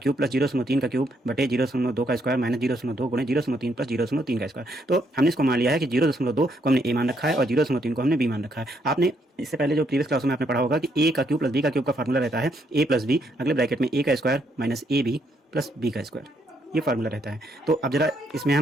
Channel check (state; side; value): normal; both; correlation 0.73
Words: प्लस 0.3 का क्यूब बटे 0.2 का स्क्वायर माइनस 0.2 गुणे 0.3 प्लस 0.3 का स्क्वायर। तो हमने इसको मान लिया है कि 0.2 को हमने ए मान रखा है और 0.3 को हमने बी मान रखा है। आपने इससे पहले जो प्रीवियस क्लासों में आपने पढ़ा होगा कि ए का क्यूब प्लस बी का क्यूब का फार्मूला रहता है ए प्लस बी अगले ब्रैकेट में ए का square minus A B plus B का स्क्वायर, ये फार्मूला रहता है। तो अब जरा इसमें